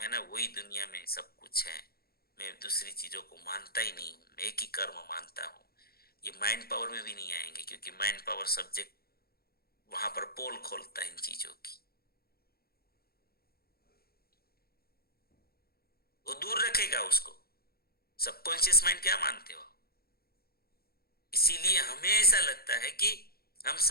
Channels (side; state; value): right; late; 0.44 ms